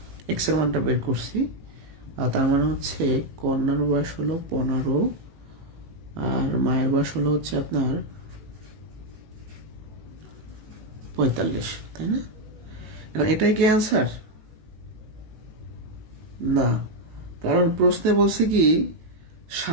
এক্স এর মানটা বের করছি, আর তার মানে হচ্ছে কন্যার বয়স হলো 15 আর মায়ের বয়স হলো হচ্ছে আপনার 45, তাই না? এখন এটাই কি অ্যান্সার? না, কারণ প্রশ্নে বলছে কি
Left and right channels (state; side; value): late; left; 18 ms